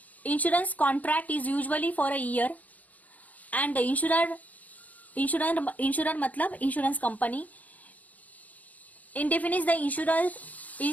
contract is usually for a year, and the insurer मतलब insurance company indemnifies the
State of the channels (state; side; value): late; right; 0.076 ms